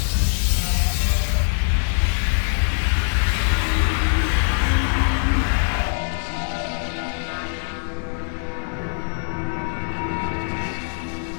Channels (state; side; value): silent; right; 64 dB below the other